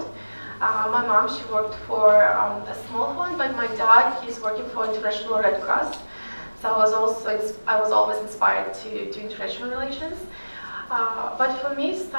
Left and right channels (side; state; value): both; inverted; correlation -1.00